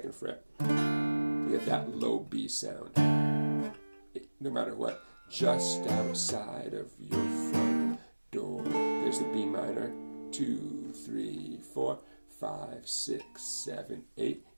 fret. You get that low B sound. No matter what. Just outside of your front door. There's the B minor. 2, 3, 4, 5, 6, 7, 8.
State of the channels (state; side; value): inverted; both; correlation -1.00